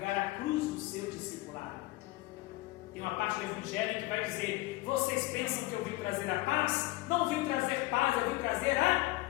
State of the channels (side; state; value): right; quieter; 19.5 dB